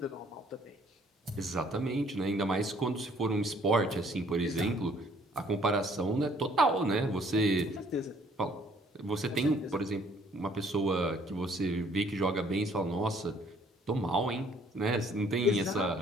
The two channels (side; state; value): both; normal; correlation 0.61